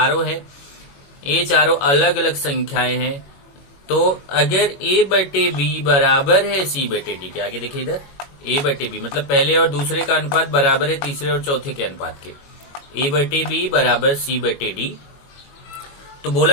है, ये चारों अलग अलग संख्याएं हैं। तो अगर ए बटे बी बराबर है सी बटे डी के, आगे देखिए इधर ए बटे बी मतलब पहले और दूसरे का अनुपात बराबर है तीसरे और चौथे के अनुपात के। ए बटे बी बराबर सी बटे डी, तो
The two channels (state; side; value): late; right; 22 ms